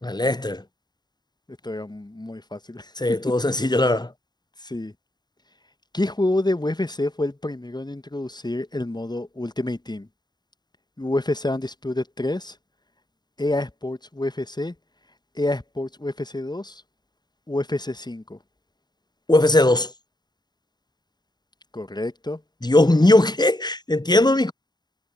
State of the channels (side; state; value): right; late; 0.20 ms